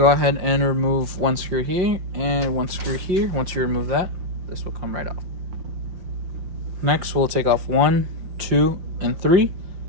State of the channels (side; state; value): left; late; 5.5 ms